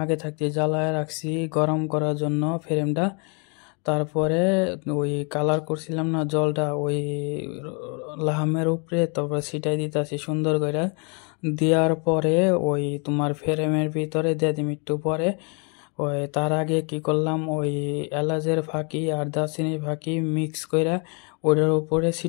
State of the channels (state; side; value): quieter; right; 35.8 dB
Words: আগে থাকতে জ্বালায় রাখছি গরম করার জন্য ফ্রেমটা। তারপরে ওই কালার করছিলাম না জলটা, ওই লাহামের উপরে তারপরে ছিটাই দিতেছি সুন্দর করে। দেওয়ার পরে ওই তোমার ফ্রেমের ভিতরে দিয়ে দিম একটু পরে। ওই তার আগে কি করলাম, ওই এলাচের ফাঁকি আর দারচিনির ফাঁকি মিক্স করে ওটার উপরে